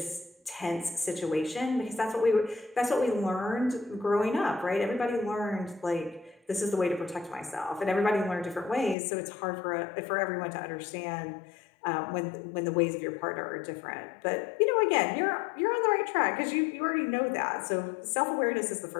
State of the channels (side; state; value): right; drops out; at 9.0 s